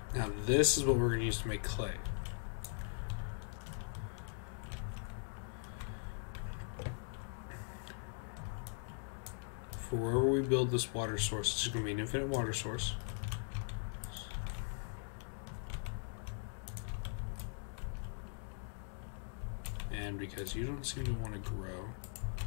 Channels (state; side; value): silent; right; digital silence